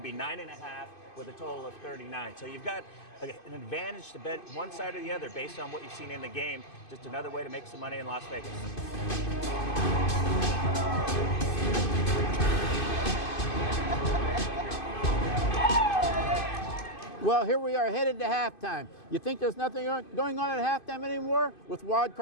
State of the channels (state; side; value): late; right; 2.5 ms